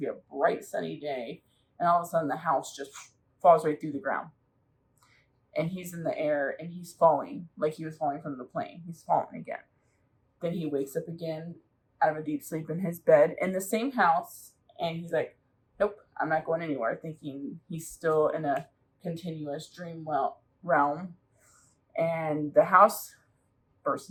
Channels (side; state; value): both; identical; correlation 1.00